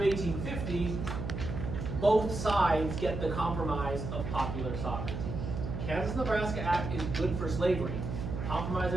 1850, both sides get the compromise of popular sovereignty. Kansas-Nebraska Act is good for slavery. Compromise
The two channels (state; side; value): noise; right; hum, 5 dB below the sound